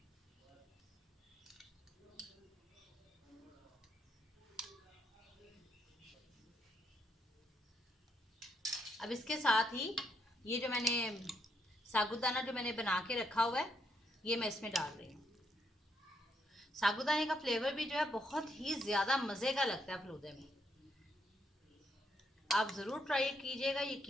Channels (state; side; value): normal; both; correlation 0.76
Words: अब इसके साथ ही ये जो मैंने साबूदाना जो मैंने बना के रखा हुआ है ये मैं इसमें डाल रही हूँ। साबूदाने का फ्लेवर भी जो है बहुत ही ज़्यादा मज़े का लगता है फलूदे में। आप ज़रूर ट्राई कीजिएगा,